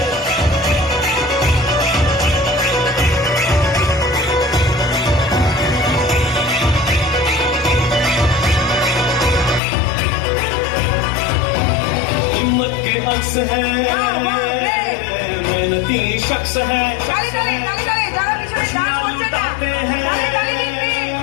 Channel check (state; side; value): drops out; right; at 9.6 s